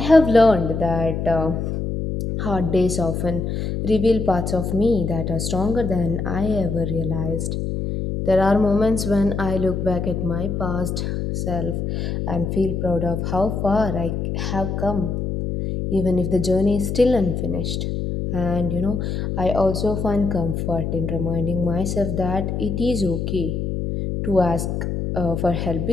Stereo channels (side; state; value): left; noise; hum, 2 dB below the sound